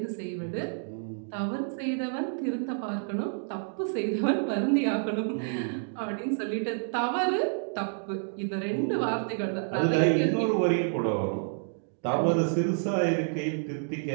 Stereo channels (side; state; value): left; silent; digital silence